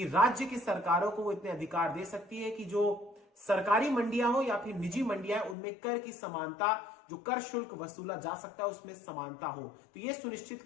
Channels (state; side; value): drops out; right; at 5.6 s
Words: राज्य की सरकारों को वो इतने अधिकार दे सकती है कि जो सरकारी मंडियां हो या फिर निजी मंडियां, उनमें कर की समानता, जो कर शुल्क वसूला जा सकता है उसमें समानता हो, तो यह सुनिश्चित